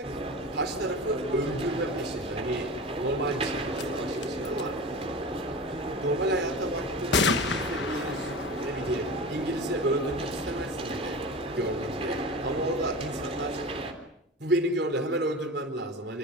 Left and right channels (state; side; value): normal; both; correlation 0.31